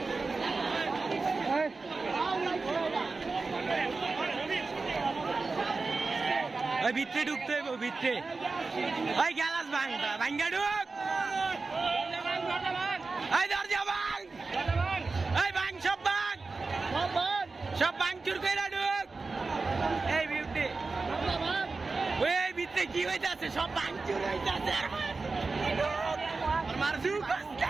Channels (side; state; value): left; quieter; 4.0 dB